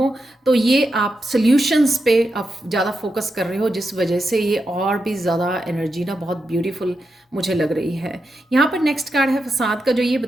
तो ये आप सल्यूशंस पे आप ज़्यादा फोकस कर रहे हो, जिस वजह से ये और भी ज़्यादा एनर्जी ना बहुत ब्यूटीफुल मुझे लग रही है। यहाँ पर नेक्स्ट कार्ड है फसाद का, जो ये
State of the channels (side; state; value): both; normal; correlation 0.87